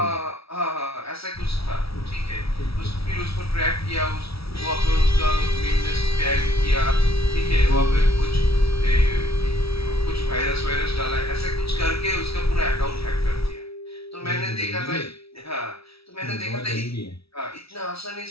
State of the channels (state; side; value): late; right; 0.76 ms